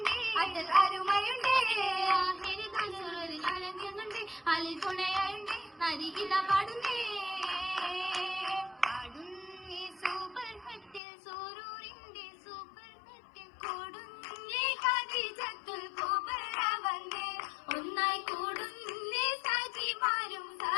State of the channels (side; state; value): right; drops out; at 11.0 s